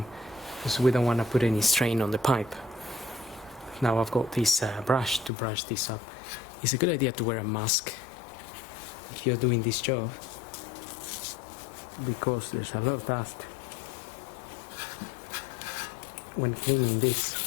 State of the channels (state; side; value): drops out; right; at 5.3 s